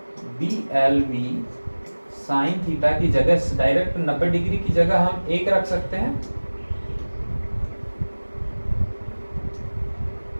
BLV साइन थीटा की जगह डायरेक्ट 90 डिग्री की जगह हम 1 रख सकते हैं,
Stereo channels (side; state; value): both; inverted; correlation -1.00